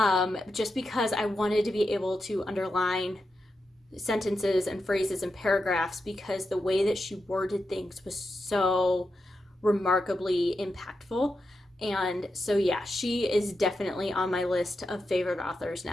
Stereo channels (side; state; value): both; normal; correlation 0.88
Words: just because I wanted to be able to underline sentences and phrases and paragraphs, because the way that she worded things was so remarkably impactful. And so, yeah, she is definitely on my list of favorite authors